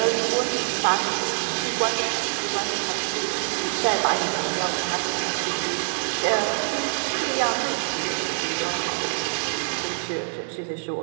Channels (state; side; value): silent; left; digital silence